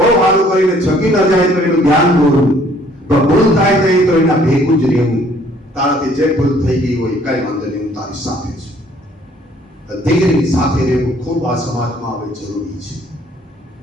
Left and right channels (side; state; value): both; normal; correlation 0.60